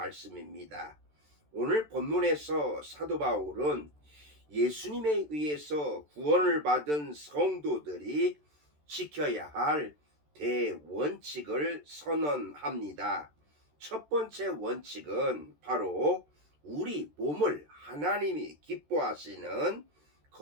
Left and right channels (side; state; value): left; late; 13 ms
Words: 오늘 본문에서 사도 바울은 예수님에 의해서 구원을 받은 성도들이 지켜야 할 대원칙을 선언합니다. 첫 번째 원칙은 바로 우리 몸을 하나님이 기뻐하시는